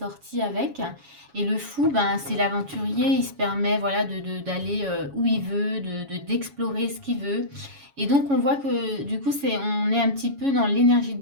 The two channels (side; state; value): left; late; 7.2 ms